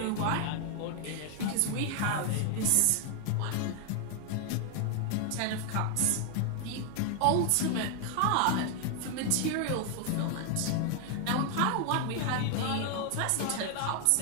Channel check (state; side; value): different; both; correlation 0.00